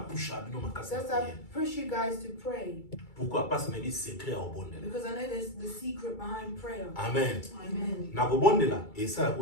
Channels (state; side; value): late; right; 2.3 ms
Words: bino makasi. That's why I push you guys to pray. Pourquoi? Parce que c'est secret au bonde. Because I know there's the secret behind prayer. Amen. Amen. Na go bonde la et ça